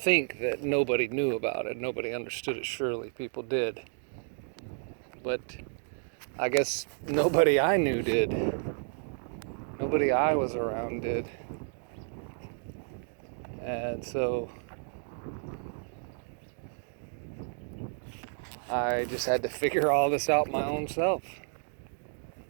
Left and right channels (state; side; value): silent; left; 57 dB below the other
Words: that nobody knew about it. Nobody understood it. Surely people did. But I guess nobody I knew did. Nobody I was around did. And so I just had to figure all this out my own self.